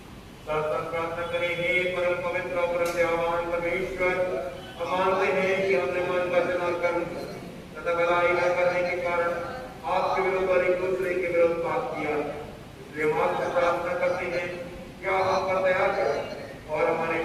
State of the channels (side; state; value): both; identical; correlation 1.00